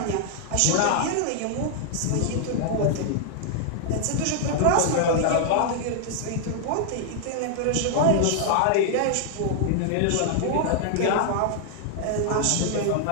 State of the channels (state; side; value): different; both; correlation -0.01